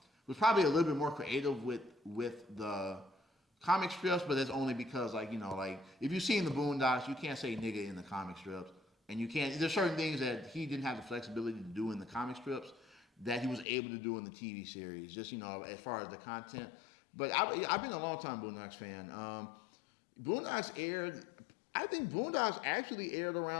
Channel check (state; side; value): drops out; right; at 13.7 s